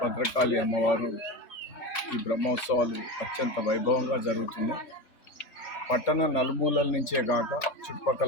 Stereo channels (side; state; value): right; late; 3.5 ms